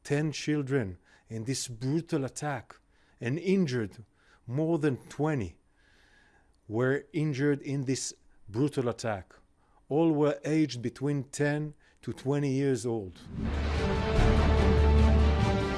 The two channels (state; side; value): identical; both; correlation 1.00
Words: 10 children in this brutal attack and injured more than 20 were injured in this brutal attack. All were aged between 10 to 20 years old.